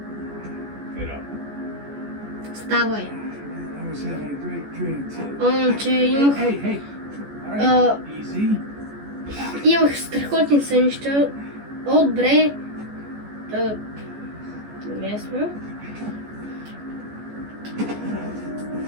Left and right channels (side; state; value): left; late; 14 ms